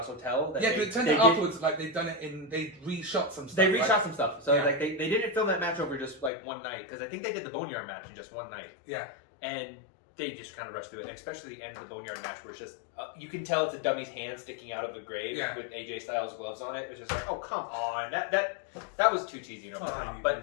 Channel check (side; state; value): right; drops out; at 6.3 s